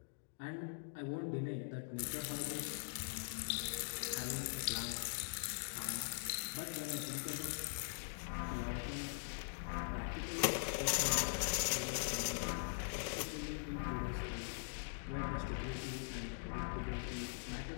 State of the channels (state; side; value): silent; right; digital silence